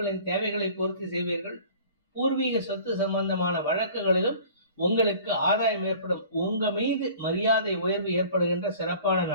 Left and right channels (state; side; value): inverted; both; correlation -0.47